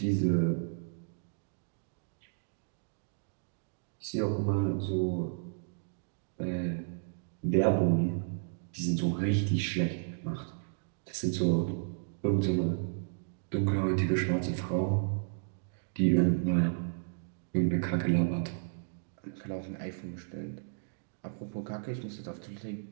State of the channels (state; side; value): silent; left; digital silence